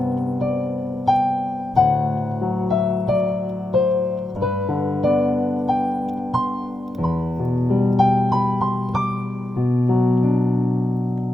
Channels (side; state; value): left; noise; hum, 29 dB below the sound